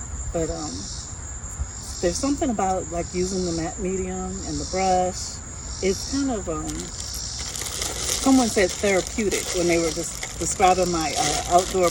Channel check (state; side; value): identical; both; correlation 1.00